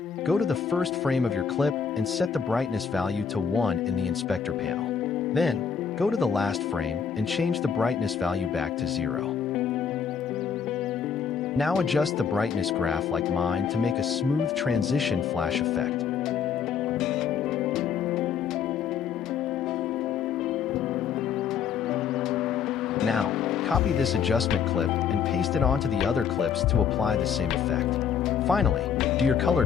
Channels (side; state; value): right; quieter; 7.1 dB